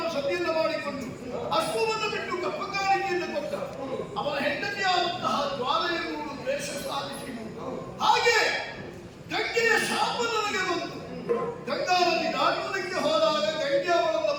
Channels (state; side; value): identical; both; correlation 1.00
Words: ಮಾಡಿಕೊಂಡು ಅಶ್ವವನ್ನು ಬಿಟ್ಟು ಕಪ್ಪಕಾರಿಕೆಯನ್ನು ಕೊಟ್ಟ. ಅವನ ಹೆಂಡತಿಯಾದಂತಹ ಜ್ವಾಲೆಯನ್ನು ದ್ವೇಷ ಸಾಧಿಸಿದರು. ಹಾಗೆ ಗಂಗೆಯ ಶಾಪ ನನಗೆ ಬಂತು. ಗಂಗಾ ನದಿ ದಾಟುವುದಕ್ಕೆ ಹೋದಾಗ ಗಂಗೆ ಅವಳನ್ನು